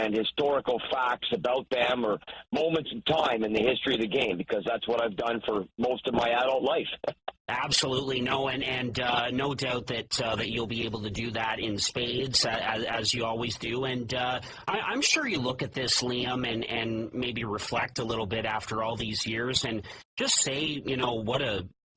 historical facts about them or moments in time in the history of the game, because that's what I've done for most of my adult life. Absolutely, no, and no doubt that you'll be able to do that in spades as you always do. And I'm sure you look at this, Liam, and maybe reflect a little bit after all these years, and just say, what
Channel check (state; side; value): identical; both; correlation 1.00